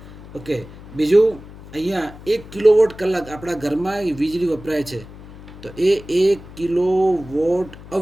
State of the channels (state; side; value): noise; left; hum, 17 dB below the sound